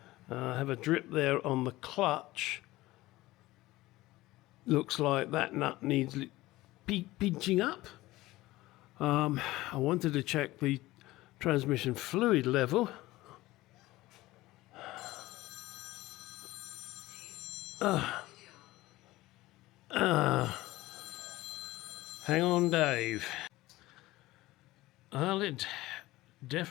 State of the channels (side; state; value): right; quieter; 18.2 dB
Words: Have a drip there on the clutch. Looks like that nut needs pinching up. I wanted to check the transmission fluid level. Hang on, Dave. Well, it